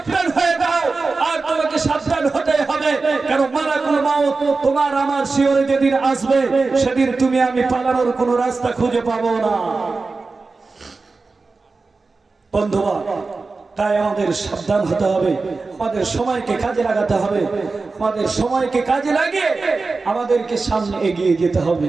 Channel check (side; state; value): left; quieter; 4.0 dB